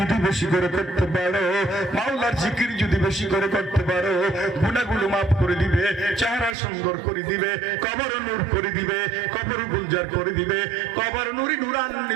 বেশি করে করতে পারো, মাওলার জিকির যদি বেশি করে করতে পারো, গুনাহগুলো মাফ করে দিবে, চেহারা সুন্দর করে দিবে, কবর নূর করে দিবে, কবর গুলজার করে দিবে, কবর নুরি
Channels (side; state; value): left; drops out; at 6.6 s